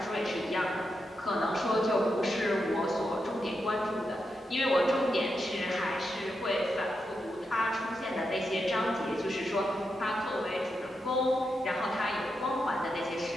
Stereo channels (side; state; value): both; normal; correlation 0.86